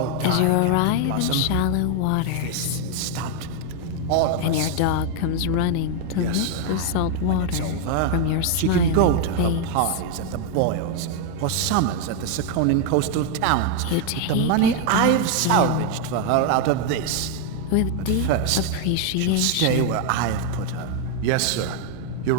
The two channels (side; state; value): both; different; correlation 0.00